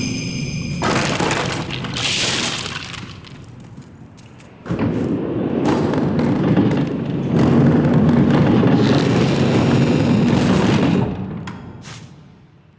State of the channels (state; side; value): identical; both; correlation 1.00